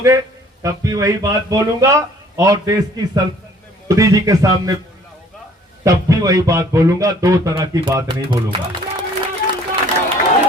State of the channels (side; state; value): both; normal; correlation 0.56